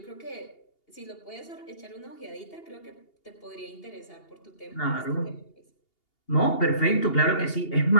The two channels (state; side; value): late; right; 2.8 ms